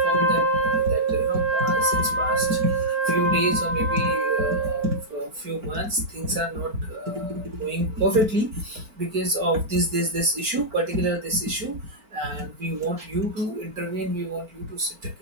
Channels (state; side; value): late; left; 4.4 ms